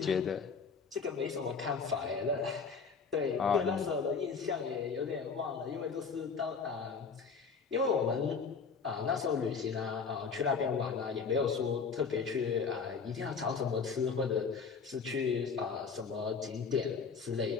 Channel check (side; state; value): right; quieter; 5.4 dB